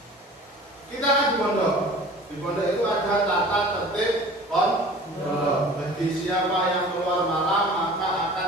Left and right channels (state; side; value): normal; both; correlation 0.43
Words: Kita kan di pondok. Di pondok itu ada tata tertib pondok.